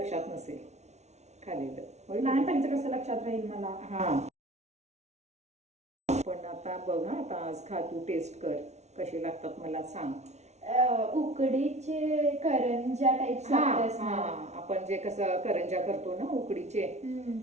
नसेल खाल्लेलं. लहानपणीचं कसं लक्षात राहील मला. हा, पण आता बघ हा, आता आज खा, तू टेस्ट कर कशी लागतात मला सांग. उकडीचे करंजा टाईप. आपण जे कसं करंजा करतो ना उकडीचे,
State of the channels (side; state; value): left; late; 0.32 ms